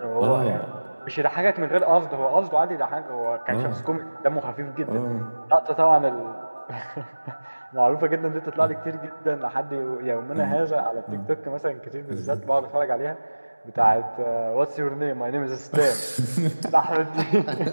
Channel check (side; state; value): both; inverted; correlation -1.00